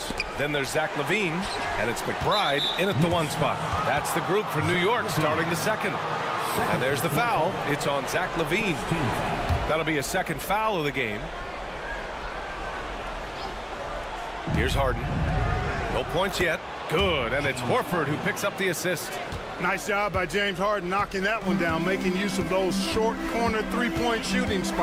Then there's Zach LaVine. And it's McBride in at the 1 spot. That's the group for New York starting the second. And there's the foul. It's on Zach LaVine. That'll be a second foul of the game. Here's Harden. No points yet. Good. And it's Horford who picks up the assist. Nice job by James Harden knocking that one down, making use of those short corner three-point shooting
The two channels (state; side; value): identical; both; correlation 1.00